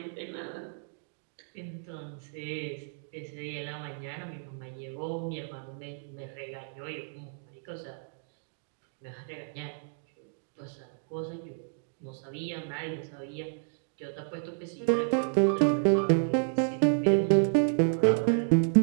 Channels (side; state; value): left; silent; digital silence